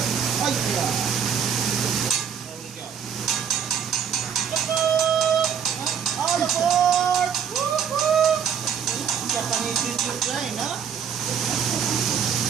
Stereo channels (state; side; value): quieter; left; 7.6 dB